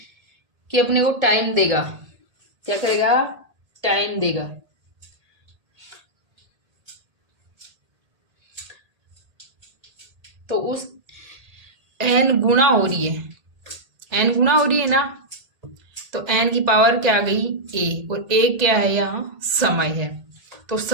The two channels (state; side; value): late; left; 1.8 ms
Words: कि अपने को टाइम देगा, क्या करेगा, टाइम देगा। तो उस n गुना हो रही है, n गुना हो रही है ना, तो n की पावर क्या आ गई, a, और a क्या है, यहाँ समय है। तो